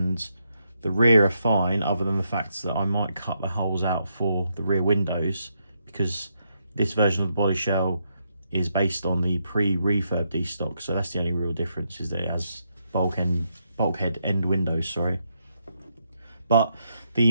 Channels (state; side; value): inverted; both; correlation -0.79